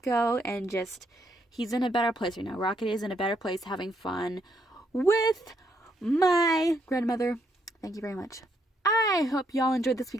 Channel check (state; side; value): normal; both; correlation 0.74